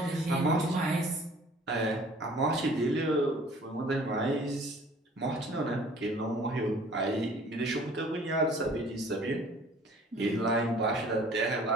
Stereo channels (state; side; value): normal; both; correlation 0.52